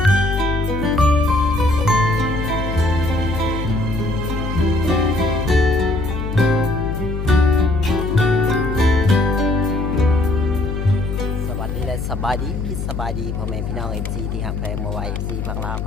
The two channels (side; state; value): left; noise; hum, 4 dB below the sound